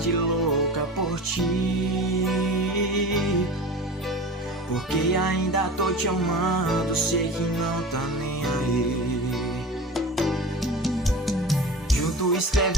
louca por ti, porque ainda tô te amando, sei que não tá nem aí. Junto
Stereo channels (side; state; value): both; normal; correlation 0.34